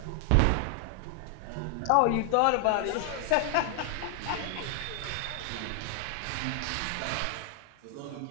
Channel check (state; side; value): different; both; correlation 0.00